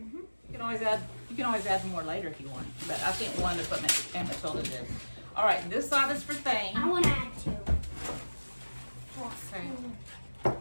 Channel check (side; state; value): both; inverted; correlation -1.00